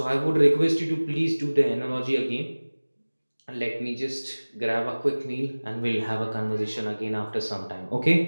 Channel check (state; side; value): inverted; both; correlation -1.00